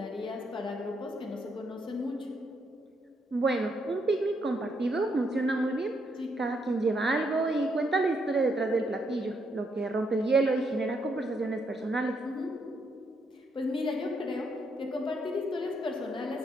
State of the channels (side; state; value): both; normal; correlation 0.76